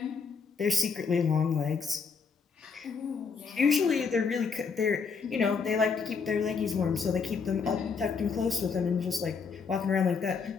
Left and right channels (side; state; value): right; quieter; 5.4 dB